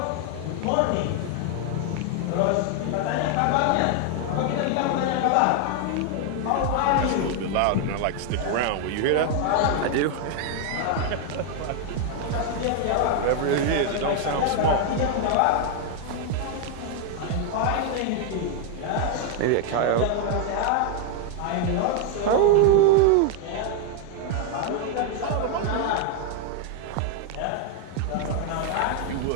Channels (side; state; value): both; different; correlation 0.00